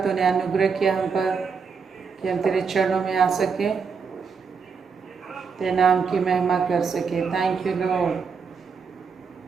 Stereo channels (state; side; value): quieter; left; 5.6 dB